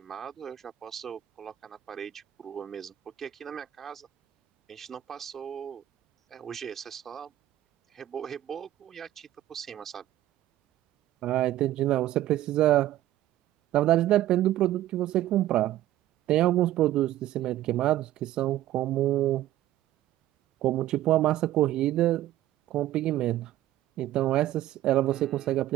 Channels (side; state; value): left; quieter; 13.9 dB